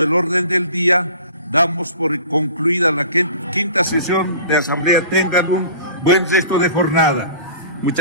el orden del día, damos por concluida la quinta sesión de Asamblea. Tengan un buen resto de jornada.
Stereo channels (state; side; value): inverted; both; correlation -0.44